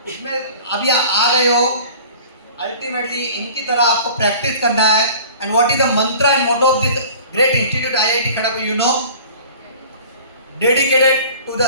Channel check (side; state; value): both; inverted; correlation -0.44